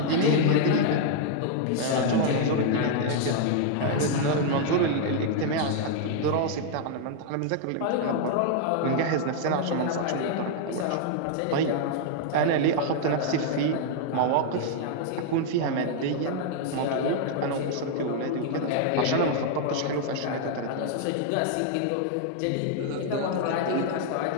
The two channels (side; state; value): both; different; correlation 0.00